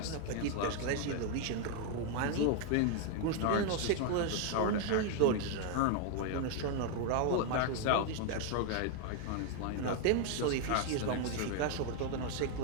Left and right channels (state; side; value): different; both; correlation 0.00